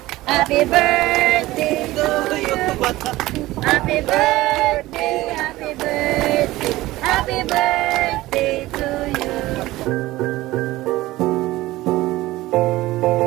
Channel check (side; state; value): left; quieter; 17.7 dB